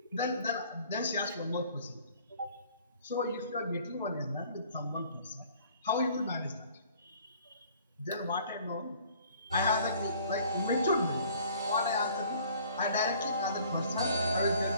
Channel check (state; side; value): inverted; both; correlation -0.54